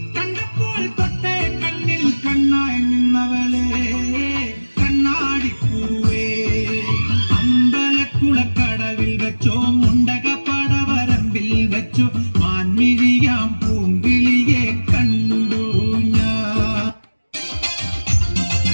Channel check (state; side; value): inverted; both; correlation -1.00